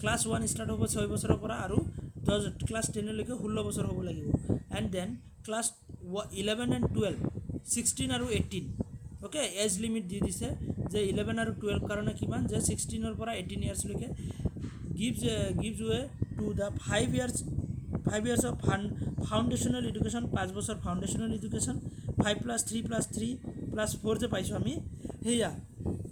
ক্লাছ 1 ষ্টাৰ্ট হ'ব 6 বছৰৰ পৰা আৰু ক্লাছ 10 লৈকে 16 বছৰ হ'ব লাগিব এণ্ড দেন ক্লাছ 11 and 12 16 আৰু 18 ওকে এজ লিমিট দি দিছে যে 11 আৰু 12 কাৰণে কিমান যে 16 পৰা 18 ইয়াৰ্ছলৈকে gives way to the 5 years of foundational education 5 বছৰ foundational education 5+3+3+4 যে পাইছোঁ আমি সেয়া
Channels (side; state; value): both; identical; correlation 1.00